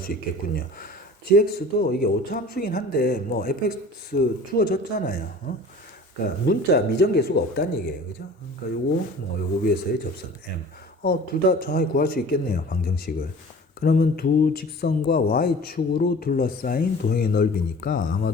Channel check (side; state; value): both; normal; correlation 0.43